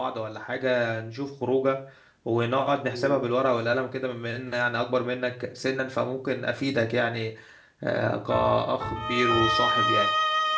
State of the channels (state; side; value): identical; both; correlation 1.00